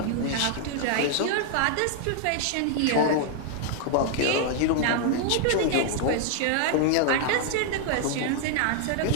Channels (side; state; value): both; different; correlation 0.00